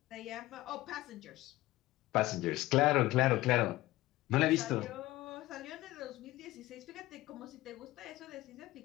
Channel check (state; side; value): quieter; right; 17.7 dB